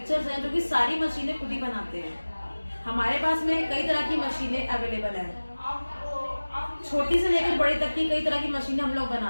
हैं जो कि सारी मशीनें खुद ही बनाते हैं। हमारे पास में कई तरह की मशीनें अवेलेबल हैं, छोटी से लेकर बड़ी तक की कई तरह की मशीनें हम लोग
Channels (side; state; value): both; inverted; correlation -1.00